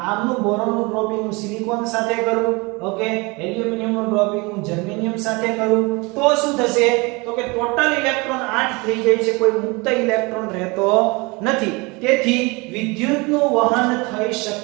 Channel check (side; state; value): left; quieter; 26.5 dB